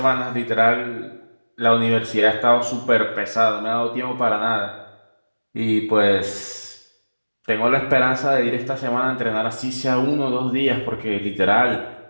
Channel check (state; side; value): inverted; both; correlation -1.00